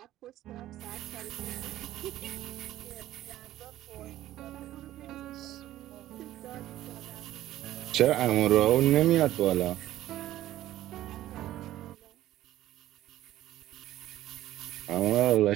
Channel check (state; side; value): quieter; left; 14.1 dB